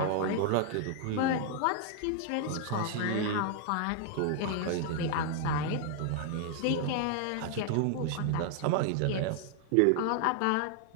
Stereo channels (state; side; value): different; both; correlation 0.00